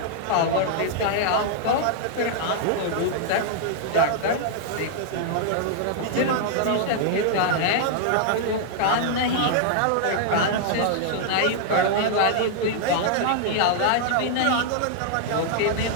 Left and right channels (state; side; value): different; both; correlation -0.01